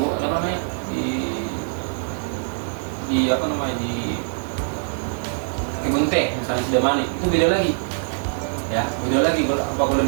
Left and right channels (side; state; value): left; silent; 60 dB below the other